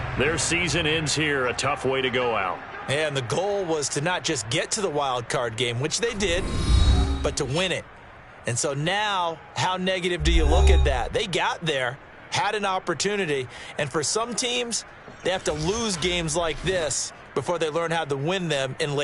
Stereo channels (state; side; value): identical; both; correlation 1.00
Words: Their season ends here, a tough way to go out. And the goal was to not just get to the wild card game, which they did, but to win it. And so now, how negative do you look at that? They got there, had an opportunity, and for some teams, they have to lose games like this before they learn how to win them in